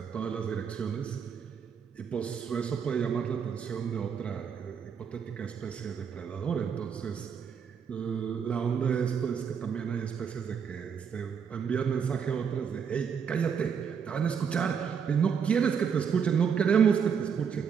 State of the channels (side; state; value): left; quieter; 7.0 dB